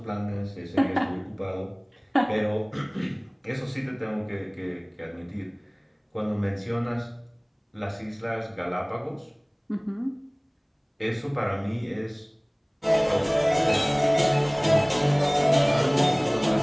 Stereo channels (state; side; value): identical; both; correlation 1.00